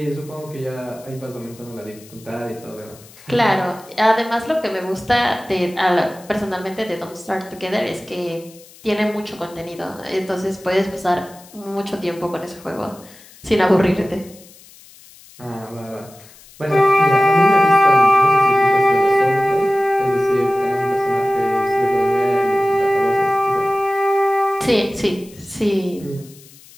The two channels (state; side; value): noise; left; hiss, 23 dB below the sound